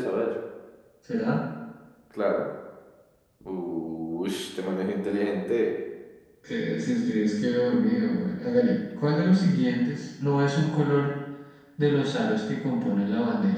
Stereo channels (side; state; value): both; identical; correlation 1.00